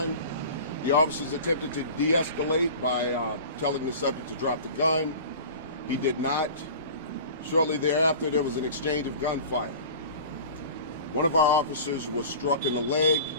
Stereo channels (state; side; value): inverted; both; correlation -0.38